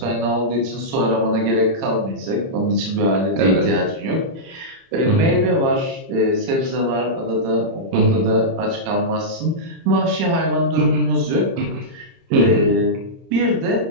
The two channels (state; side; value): late; left; 30 ms